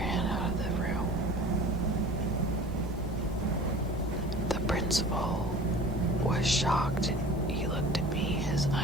out of the room. The principal was shocked. He looked at me, his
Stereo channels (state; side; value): normal; both; correlation 0.42